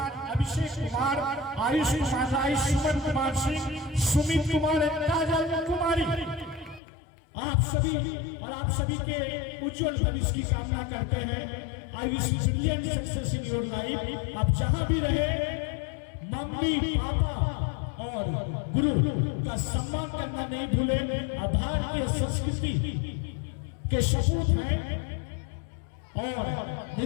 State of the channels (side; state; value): right; drops out; at 6.8 s